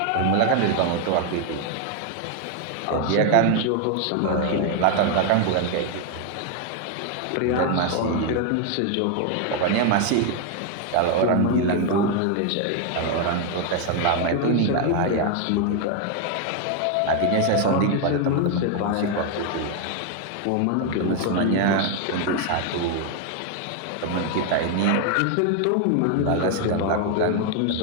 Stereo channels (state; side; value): different; both; correlation 0.01